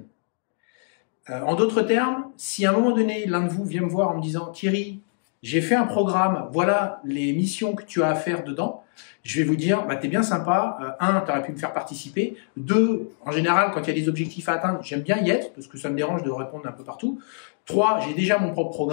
En d'autres termes, si à un moment donné, l'un de vous vient me voir en me disant « Thierry, j'ai fait un programme, voilà les missions que tu as à faire dedans », je vais vous dire bah, « T'es bien sympa, un, tu aurais pu me faire participer, deux, en général, quand il y a des objectifs à atteindre, j'aime bien y être, parce que ça me dérange de répondre un peu partout, trois, j'ai déjà mon propre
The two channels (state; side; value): silent; right; digital silence